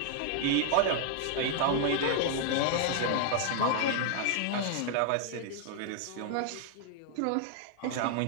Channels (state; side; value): different; both; correlation 0.00